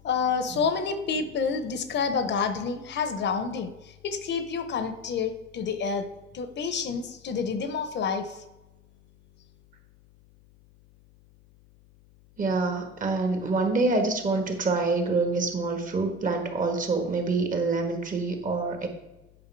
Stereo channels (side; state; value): left; noise; hum, 28 dB below the sound